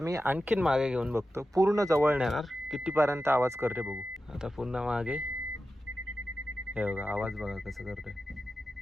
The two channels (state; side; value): normal; both; correlation 0.92